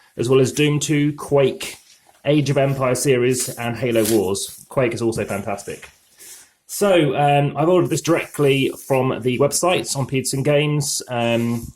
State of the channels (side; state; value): both; identical; correlation 1.00